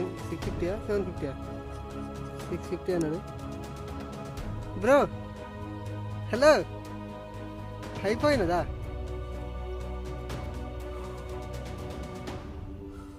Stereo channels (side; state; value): both; identical; correlation 1.00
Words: 750 650 అన్నాడు. బ్రో హలో అయిపోయినదా?